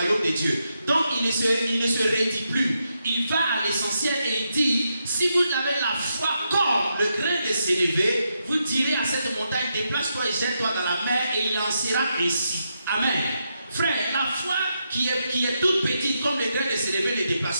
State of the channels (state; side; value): inverted; both; correlation -0.83